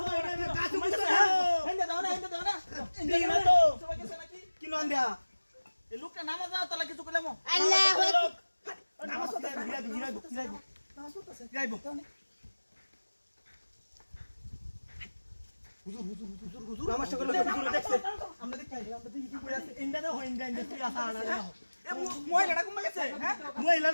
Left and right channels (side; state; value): both; inverted; correlation -1.00